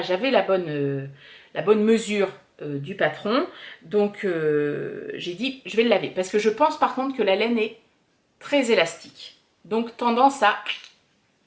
j'avais la bonne mesure du patron. Donc, j'ai dit, je vais le laver. Parce que je pense par contre que la laine est très élastique. Donc, tendance à...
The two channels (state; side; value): identical; both; correlation 1.00